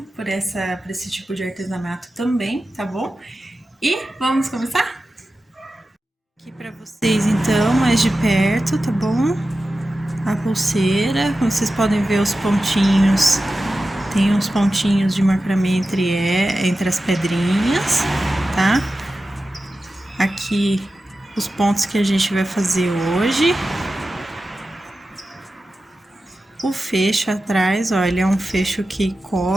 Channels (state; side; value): normal; both; correlation 0.93